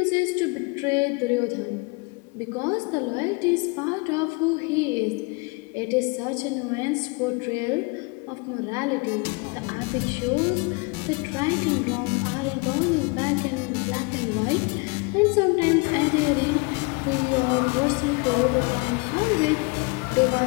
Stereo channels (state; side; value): quieter; right; 30.1 dB